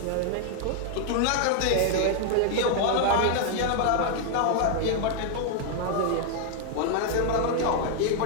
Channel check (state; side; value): different; both; correlation 0.00